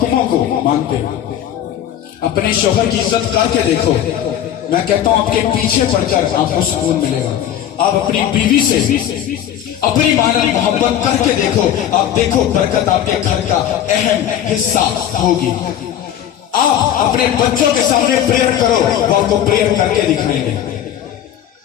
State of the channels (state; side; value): quieter; right; 10.7 dB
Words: को मानते हो। अपने शोहर की इज्जत करके देखो, मैं कहता हूं आपके पीछे पड़कर आपको सुकून मिलेगा। आप अपनी बीवी से अपनी मानव मोहब्बत करके देखो, आप देखो बरकत आपके घर का अहम हिस्सा होगी। आप अपने बच्चों के सामने प्रेयर करो, वो आपको प्रेयर करके दिखाएंगे।